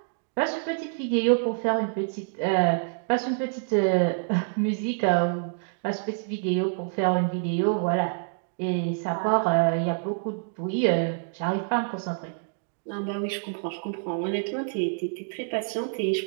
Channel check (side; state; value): left; silent; digital silence